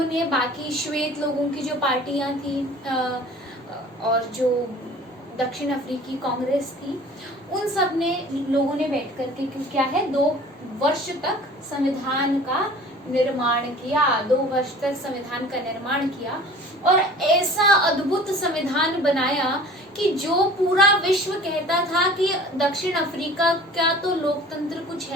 बाकी श्वेत लोगों की जो पार्टियां थी और जो दक्षिण अफ्रीकी कांग्रेस थी, उन सब ने लोगों ने बैठ करके क्या है 2 वर्ष तक संविधान का निर्माण किया, 2 वर्ष तक संविधान का निर्माण किया और ऐसा अद्भुत संविधान बनाया कि जो पूरा विश्व कहता था कि दक्षिण अफ्रीका का तो लोकतंत्र कुछ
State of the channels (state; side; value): normal; both; correlation 0.45